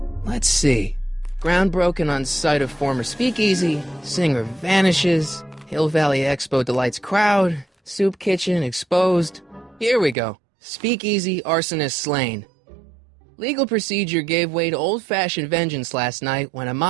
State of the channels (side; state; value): left; drops out; at 10.2 s